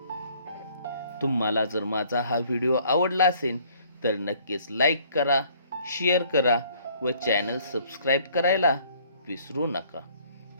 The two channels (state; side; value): inverted; both; correlation -0.60